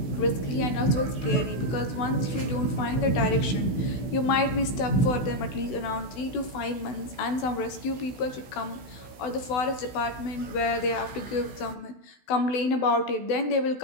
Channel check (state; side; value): late; right; 16 ms